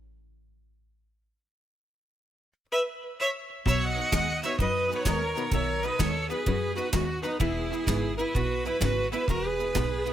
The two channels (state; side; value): normal; both; correlation 0.86